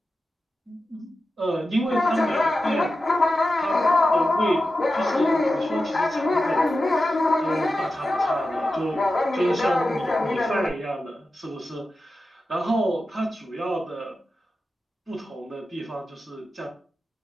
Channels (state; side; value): normal; both; correlation 0.92